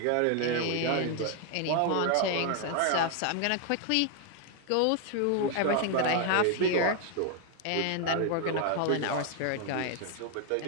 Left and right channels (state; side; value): different; both; correlation 0.01